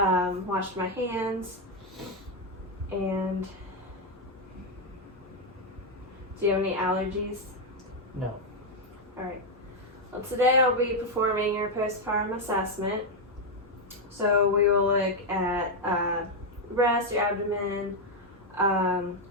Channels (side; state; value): both; normal; correlation 0.02